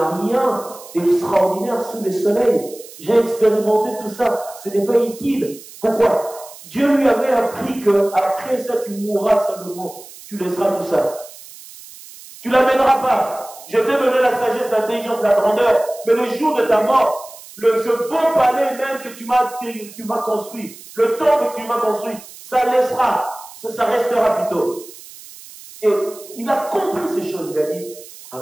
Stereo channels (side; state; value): right; noise; hiss, 18 dB below the sound